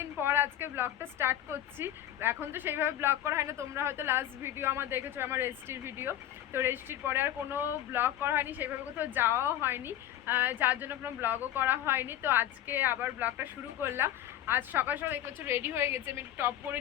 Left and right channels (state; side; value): quieter; right; 12.0 dB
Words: পর আজকে ব্লগটা স্টার্ট করছি। এখন তো সেইভাবে ব্লগ করা হয় না, তোমরা হয়তো লাস্ট ভিডিও আমার দেখেছো, আমার রেজিস্ট্রির ভিডিও। তো রেজিস্ট্রির পরে আর কোনো ব্লগ করা হয়নি, সেইভাবে কোথাও যাওয়াও হয়নি, যার জন্য কোনো ব্লগও করা হয়নি। তো আজকে আবার ব্লগটা শুরু করলাম। আজ সকাল সকাল একটু রেডি হয়ে গেছে, আমি একটু টপ করে